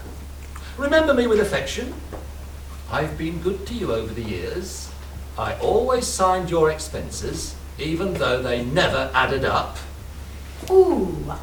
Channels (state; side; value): identical; both; correlation 1.00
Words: Remember me with affection. I've been good to you over the years. I always signed your expenses, even though they never added up. Ooh,